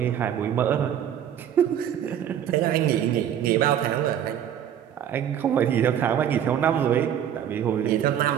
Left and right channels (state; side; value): quieter; left; 9.8 dB